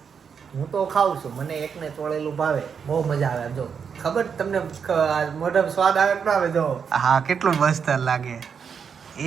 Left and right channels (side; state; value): left; quieter; 6.7 dB